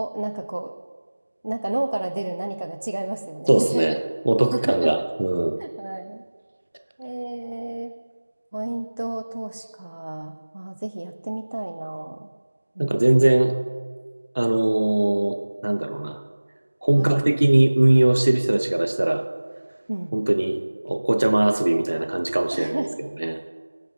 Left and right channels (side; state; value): both; inverted; correlation -1.00